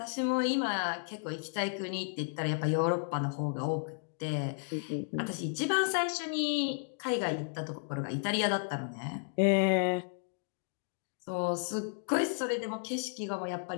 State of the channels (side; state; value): right; silent; digital silence